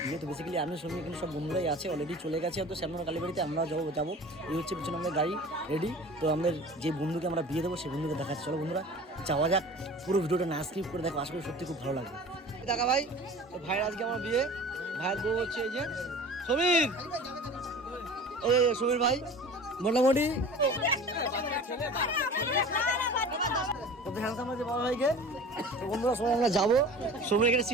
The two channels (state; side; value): normal; both; correlation 0.40